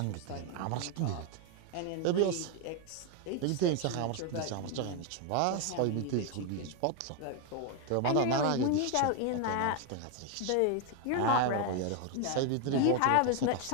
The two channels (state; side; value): different; both; correlation 0.01